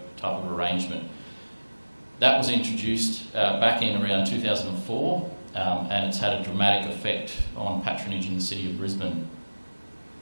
type of arrangement. That was introduced back in around 2004, and it's had a dramatic effect on patronage in the City of Brisbane.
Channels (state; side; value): inverted; both; correlation -1.00